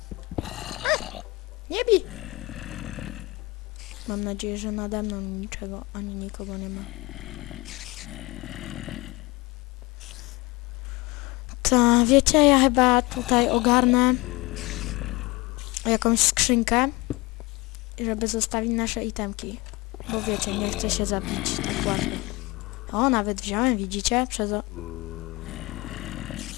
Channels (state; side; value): quieter; right; 23.1 dB